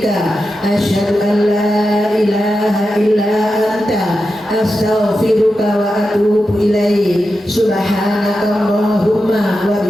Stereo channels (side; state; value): both; normal; correlation 0.90